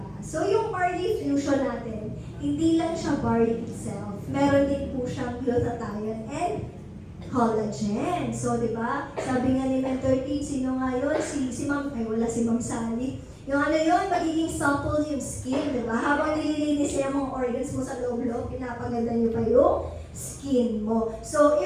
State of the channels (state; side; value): identical; both; correlation 1.00